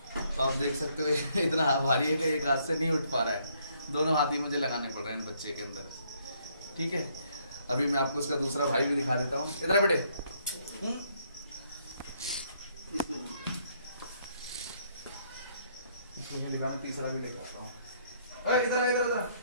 तो आप देख सकते हो इतना भारी है कि एक हाथ से नहीं उठ पा रहा है, दोनों हाथ ही मुझे लगाने पड़ रहे हैं बच्चे के अंदर। ठीक है, अभी मैं आपको इसका दूसरा भाई भी दिखा देता हूँ। इधर बेटे, इसको नहीं दिखाना, तीसरा भी लेकर आता हूँ। इधर इधर इधर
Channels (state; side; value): inverted; both; correlation -0.69